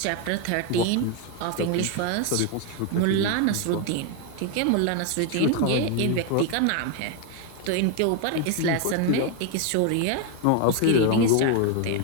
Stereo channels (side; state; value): both; different; correlation 0.01